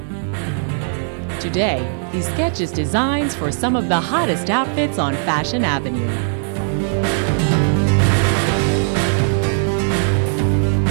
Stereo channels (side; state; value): left; silent; digital silence